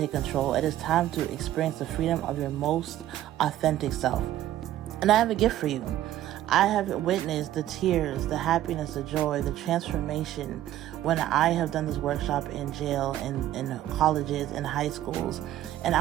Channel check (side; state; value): left; quieter; 13.2 dB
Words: control. It is time to experience the freedom of your most authentic self. And I have a gift for you. I have witnessed the tears, the happiness, the joy, the transformation when I have done this workshop in jail, in colleges, in high schools. And